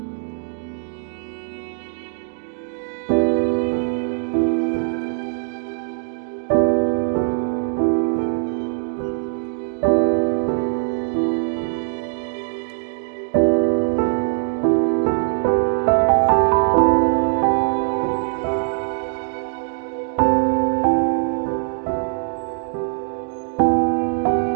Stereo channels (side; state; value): left; silent; digital silence